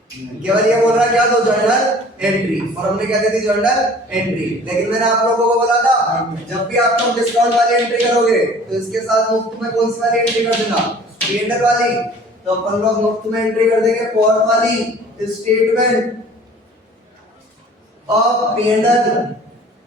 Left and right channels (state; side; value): normal; both; correlation 0.49